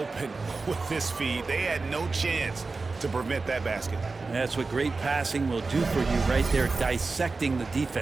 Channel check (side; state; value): left; quieter; 3.9 dB